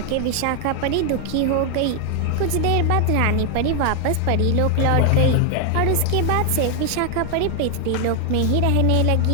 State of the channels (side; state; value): both; different; correlation 0.00